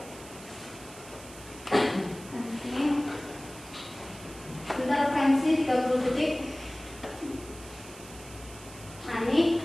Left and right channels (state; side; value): noise; right; hiss, 17 dB below the sound